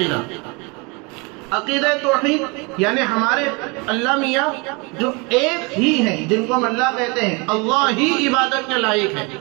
عقیدہ توحید یعنی ہمارے اللہ میاں جو ایک ہی ہیں، جن کو ہم اللہ کہتے ہیں، اللہ ہی عبادت کے لائق ہے،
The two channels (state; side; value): quieter; left; 29.4 dB